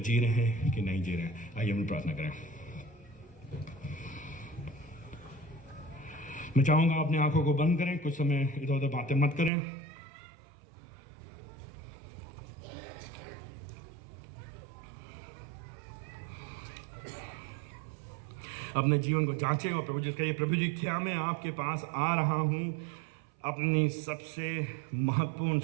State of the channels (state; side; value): drops out; left; at 9.5 s